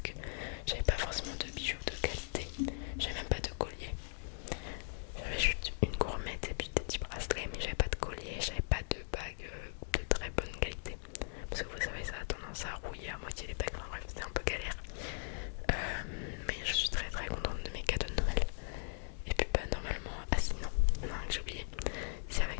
j'avais pas forcément de bijoux de qualité. J'avais même pas de collier. J'avais juste une gourmette et puis des petits bracelets, mais j'avais pas de collier, j'avais pas de bague de très bonne qualité. Parce que vous savez, ça a tendance à rouiller à moitié les bagues. Enfin bref, c'était un peu galère. Mais je suis très très contente de mes cadeaux de Noël. Et puis bah normalement, ah sinon, il y en a un que j'ai oublié. C'est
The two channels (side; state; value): right; silent; digital silence